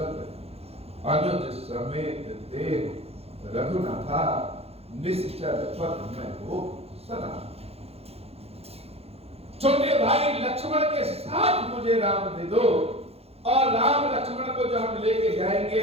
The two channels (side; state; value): left; late; 0.29 ms